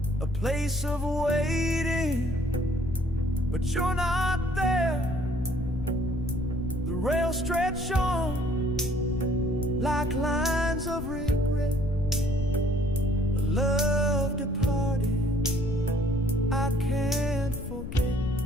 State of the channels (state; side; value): noise; left; rumble, 8 dB below the sound